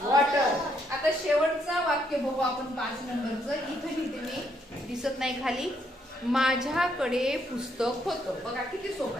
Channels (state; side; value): normal; both; correlation 0.73